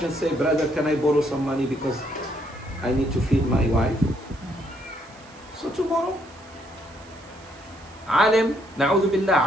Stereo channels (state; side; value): noise; right; hiss, 25 dB below the sound